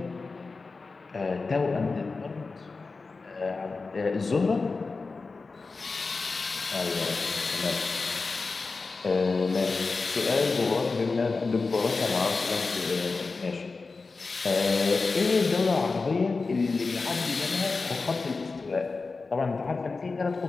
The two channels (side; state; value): right; quieter; 4.1 dB